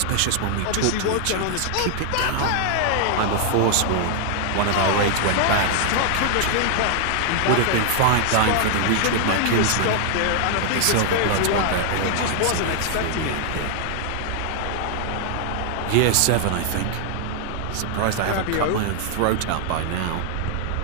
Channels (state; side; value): different; both; correlation 0.00